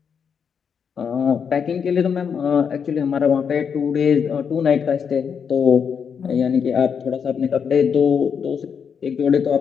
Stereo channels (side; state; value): right; quieter; 6.9 dB